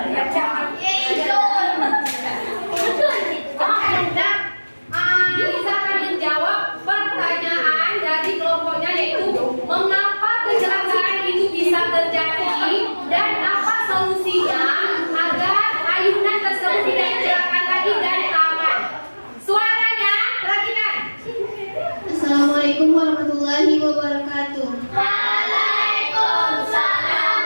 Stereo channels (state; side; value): inverted; both; correlation -1.00